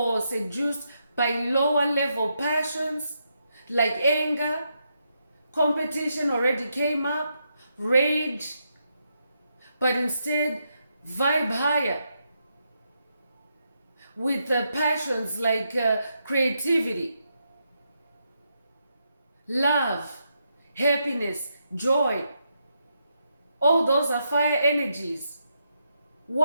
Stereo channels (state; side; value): inverted; both; correlation -0.81